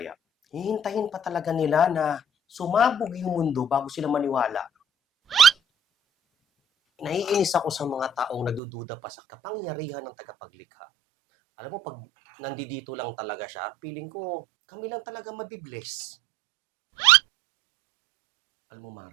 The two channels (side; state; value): left; drops out; at 8.6 s